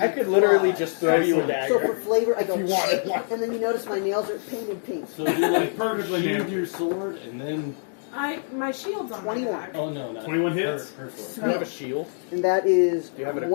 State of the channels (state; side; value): silent; right; digital silence